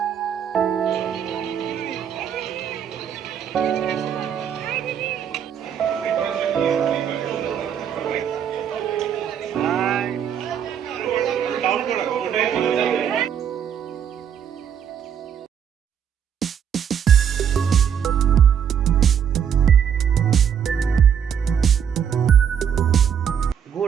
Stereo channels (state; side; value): quieter; left; 8.4 dB